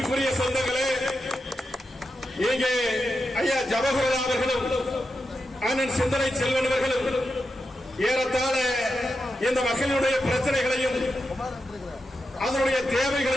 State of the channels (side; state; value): both; normal; correlation 0.88